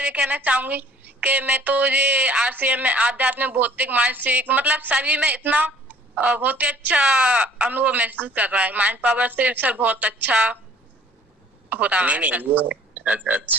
कहना चाहूंगी कि मैं तो ये आरसीएम में आध्यात्मिक, भौतिक, मानसिक, मतलब सभी में इतना बहुत ही अच्छा अनुभव महसूस कर रहा है। माइंड पावर से सर बहुत अच्छा हो रहा है। नहीं ये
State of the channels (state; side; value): normal; both; correlation 0.54